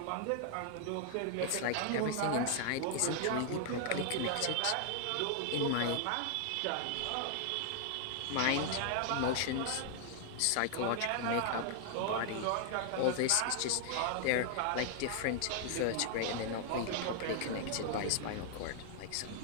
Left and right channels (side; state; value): both; different; correlation 0.00